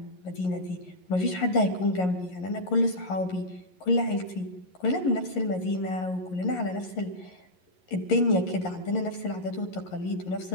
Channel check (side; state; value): right; late; 11 ms